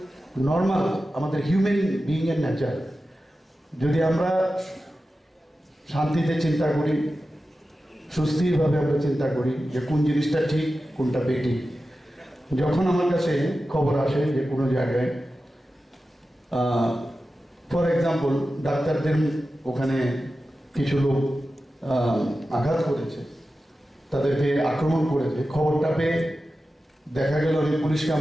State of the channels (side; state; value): both; normal; correlation 0.93